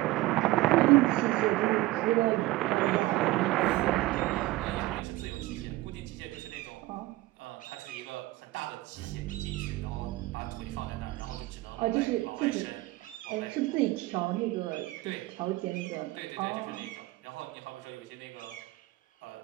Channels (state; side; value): quieter; left; 18.7 dB